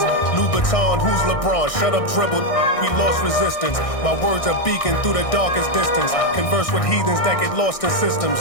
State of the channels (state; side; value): late; right; 1.6 ms